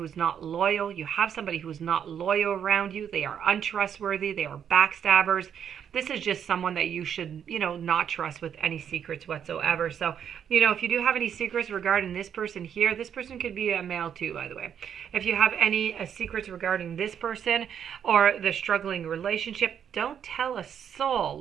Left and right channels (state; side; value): quieter; left; 8.5 dB